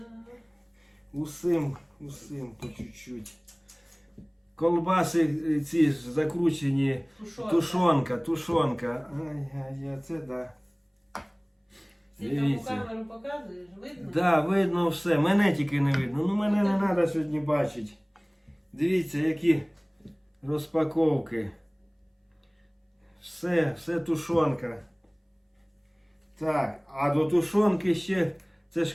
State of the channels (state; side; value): identical; both; correlation 1.00